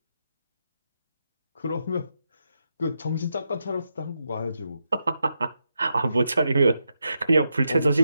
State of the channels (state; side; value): inverted; both; correlation -0.85